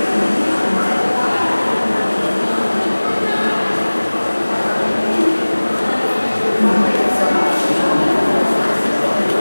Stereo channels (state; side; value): inverted; both; correlation -1.00